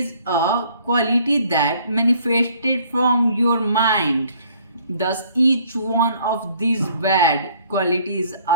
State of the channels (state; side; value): inverted; both; correlation -0.60